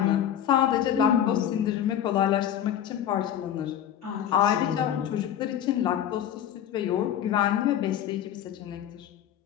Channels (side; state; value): right; quieter; 10.2 dB